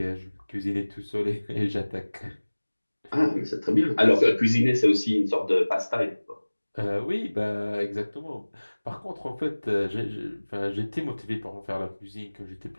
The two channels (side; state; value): both; inverted; correlation -1.00